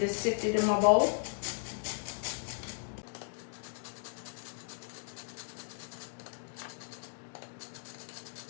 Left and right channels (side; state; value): right; silent; digital silence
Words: sifted in my bowl.